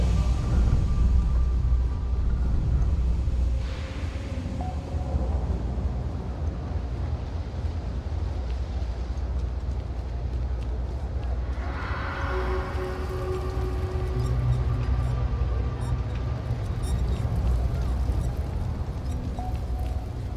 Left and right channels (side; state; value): both; identical; correlation 1.00